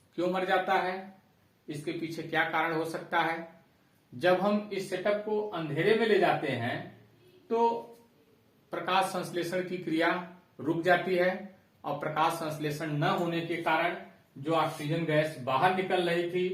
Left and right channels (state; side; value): identical; both; correlation 1.00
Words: क्यों मर जाता है? इसके पीछे क्या कारण हो सकता है? जब हम इस सेटअप को अंधेरे में ले जाते हैं तो प्रकाश संश्लेषण की क्रिया रुक जाती है और प्रकाश संश्लेषण न होने के कारण जो ऑक्सीजन गैस बाहर निकल रही